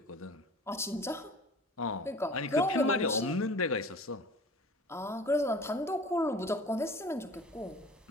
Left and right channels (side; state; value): both; normal; correlation 0.43